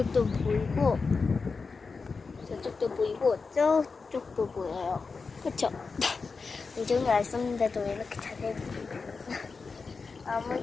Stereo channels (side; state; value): right; quieter; 4.6 dB